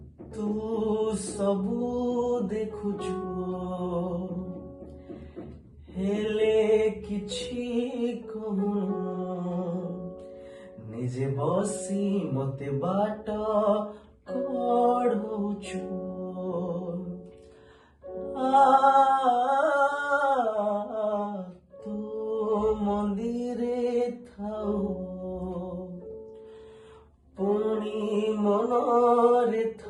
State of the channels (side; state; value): both; identical; correlation 1.00